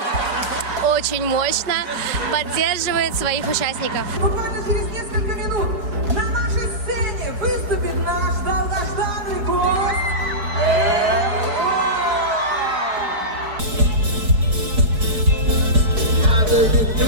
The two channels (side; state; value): left; late; 4.5 ms